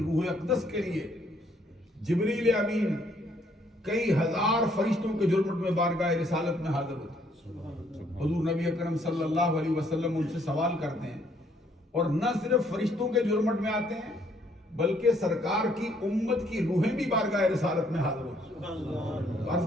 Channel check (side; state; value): both; normal; correlation 0.67